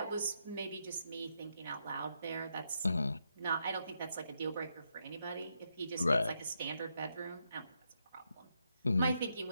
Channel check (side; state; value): both; inverted; correlation -0.81